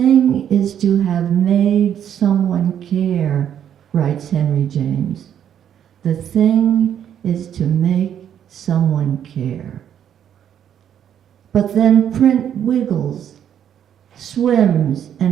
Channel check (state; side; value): quieter; left; 9.5 dB